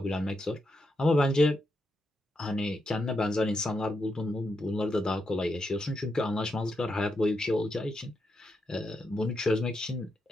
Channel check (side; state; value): both; normal; correlation 0.83